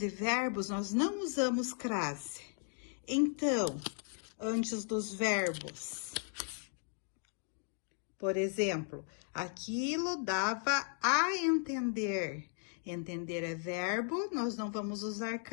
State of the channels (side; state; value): right; silent; 54 dB below the other